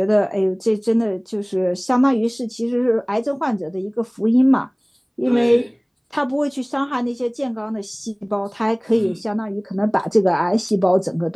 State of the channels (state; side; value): identical; both; correlation 1.00